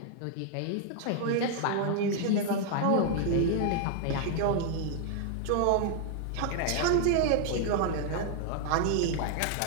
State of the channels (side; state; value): both; different; correlation 0.00